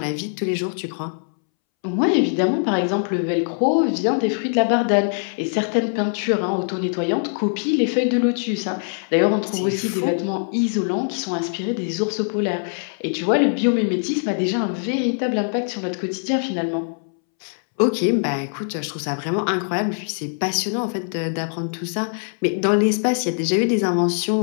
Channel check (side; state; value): right; silent; 64 dB below the other